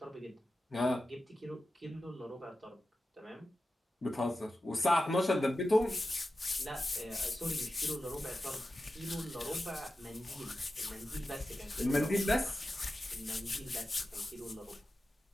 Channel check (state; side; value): normal; both; correlation 0.93